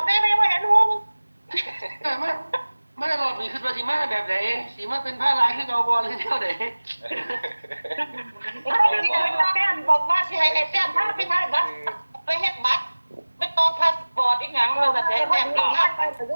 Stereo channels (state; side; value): inverted; both; correlation -1.00